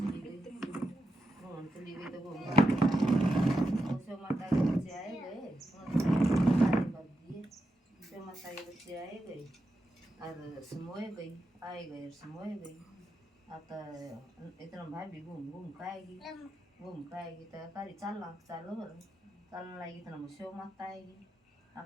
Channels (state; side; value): normal; both; correlation 0.87